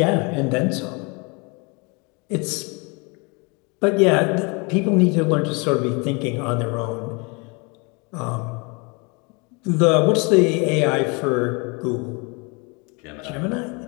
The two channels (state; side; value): quieter; right; 30.7 dB